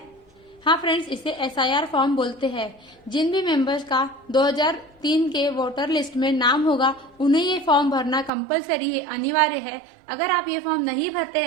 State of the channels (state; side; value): drops out; left; at 8.3 s